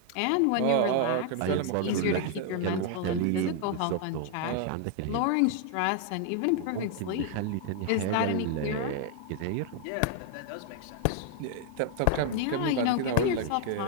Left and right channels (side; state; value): both; different; correlation 0.00